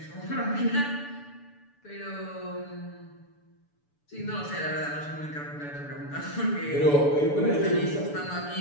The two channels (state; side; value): late; right; 6.9 ms